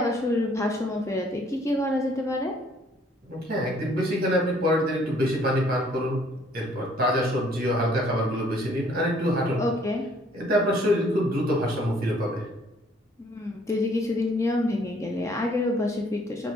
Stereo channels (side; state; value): both; normal; correlation 0.62